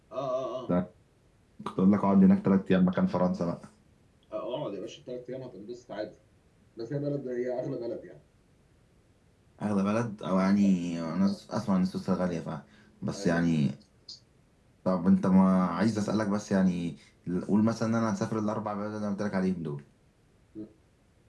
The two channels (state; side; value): identical; both; correlation 1.00